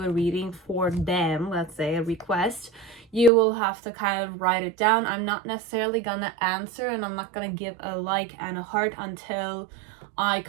a reading for them, let's say a request. You will have to kind of write it down. I'm not necessarily gonna answer, and I'm not gonna give a like and a heart until I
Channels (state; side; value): drops out; left; at 3.3 s